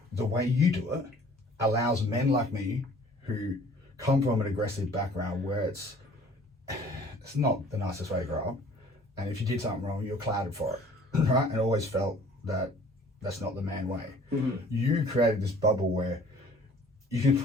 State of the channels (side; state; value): both; normal; correlation 0.52